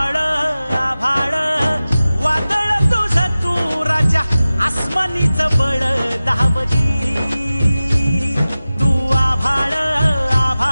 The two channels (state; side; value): inverted; both; correlation -0.96